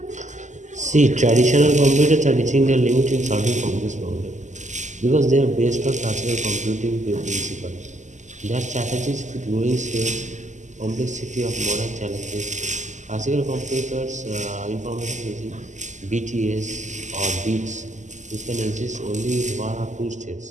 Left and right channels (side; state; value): left; late; 0.34 ms